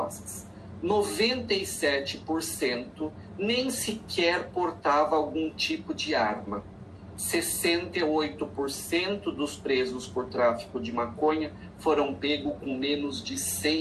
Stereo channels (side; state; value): both; identical; correlation 1.00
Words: 97% nem sequer portava algum tipo de arma. 68% dos presos por tráfico de maconha foram pegos com menos de